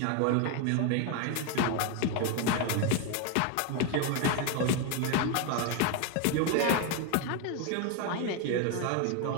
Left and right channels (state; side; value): different; both; correlation 0.01